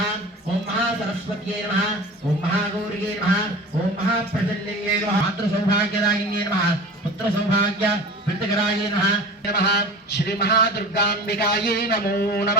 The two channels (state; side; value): normal; both; correlation 0.36